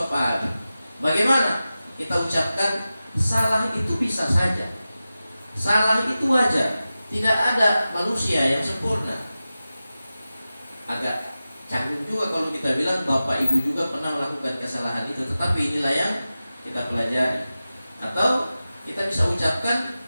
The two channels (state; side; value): inverted; both; correlation -0.94